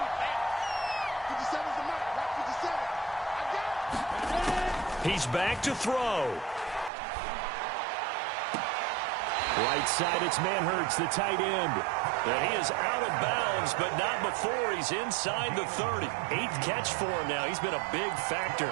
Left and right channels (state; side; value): drops out; left; at 6.9 s